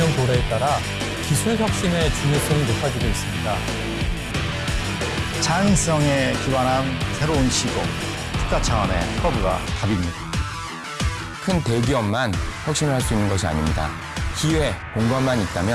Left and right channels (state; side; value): identical; both; correlation 1.00